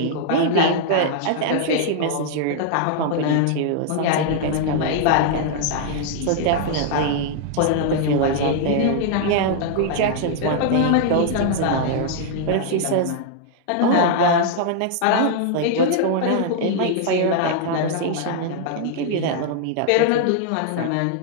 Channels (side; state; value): both; different; correlation -0.01